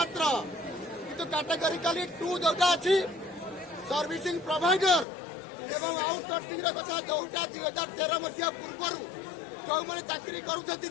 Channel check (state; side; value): drops out; right; at 5.1 s